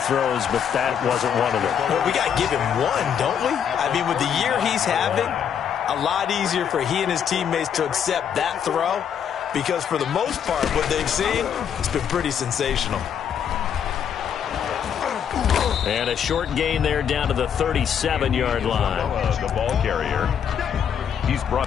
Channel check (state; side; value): quieter; right; 8.3 dB